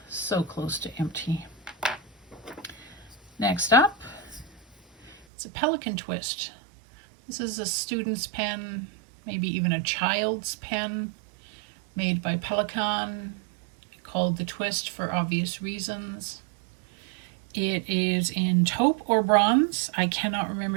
so close to empty. Next up, it's a Pelikan Twist. This is a student's pen, maybe even a child's pen, made by Pelikan, called the Twist for obvious reasons. It is in taupe or bronze. I cannot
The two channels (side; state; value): left; drops out; at 5.2 s